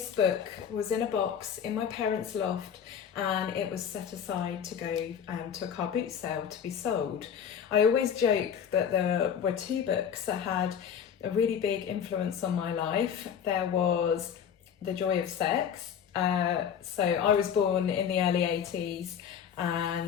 book was in a box in my parents' loft and it was set aside to go to a car boot sale to be sold. I always joke that there were 2 books that had a really big influence on my life. There was The Joy of Sex. So I was born in the early 80s.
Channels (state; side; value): quieter; right; 8.1 dB